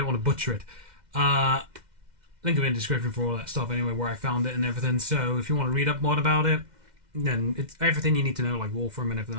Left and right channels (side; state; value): left; late; 2.1 ms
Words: want to butcher it. Link in the description for all that stuff anyway, where I found it and everything. So if you want to read up more about it, then it's everything you need to know, like law firm and everything